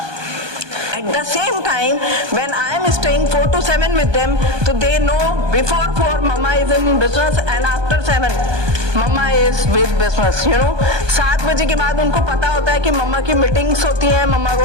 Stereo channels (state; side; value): late; left; 1.2 ms